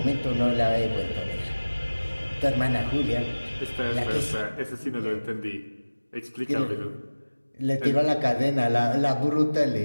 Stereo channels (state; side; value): inverted; both; correlation -1.00